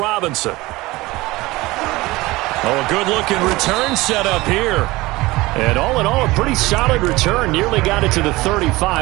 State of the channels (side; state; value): left; quieter; 20.3 dB